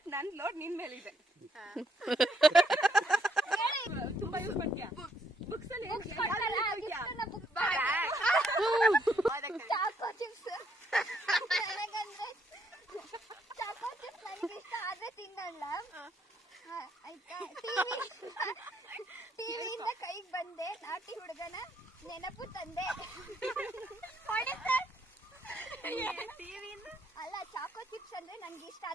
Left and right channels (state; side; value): normal; both; correlation 0.72